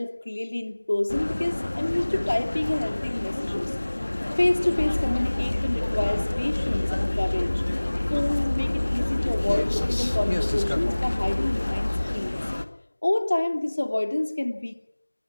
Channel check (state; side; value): inverted; both; correlation -1.00